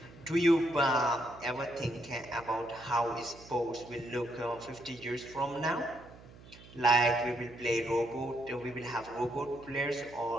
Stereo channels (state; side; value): noise; right; hum, 20 dB below the sound